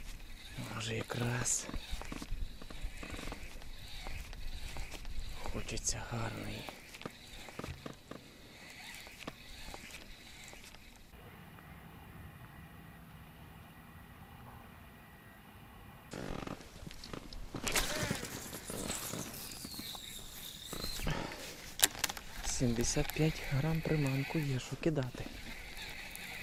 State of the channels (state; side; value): identical; both; correlation 1.00